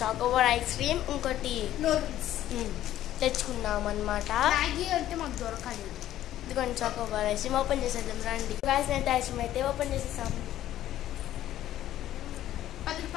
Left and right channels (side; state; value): right; quieter; 12.9 dB